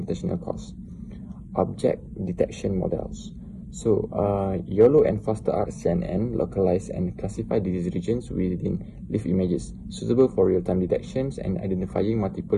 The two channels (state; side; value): identical; both; correlation 1.00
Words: costs. Object detection models. So, YOLO and FasterR CNN localize and classify disease regions within leaf images, suitable for real-time detections and identifying multiple